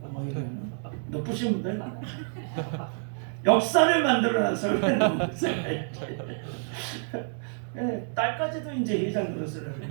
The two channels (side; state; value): left; silent; 59 dB below the other